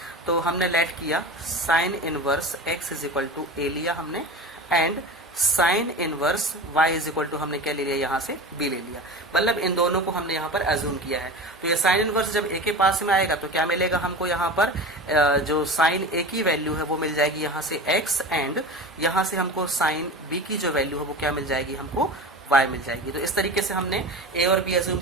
तो हमने लेट किया sine inverse x is equal to a लिया हमने, and sine inverse y is equal to हमने क्या ले लिया, यहाँ से b ले लिया। मतलब इन दोनों को हमने यहाँ पर अज्यूम किया है। तो ये साइन इनवर्स जब a के पास में आएगा तो क्या मिलेगा हमको, यहाँ पर जो साइन a की वैल्यू है वो मिल जाएगी यहाँ से x, एंड यहाँ से हमको साइन b की जो वैल्यू है वो क्या मिल जाएगी, हमको y मिल जाएगी। तो इस तरीके से हमने a और b अज्यूम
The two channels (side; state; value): both; normal; correlation 0.31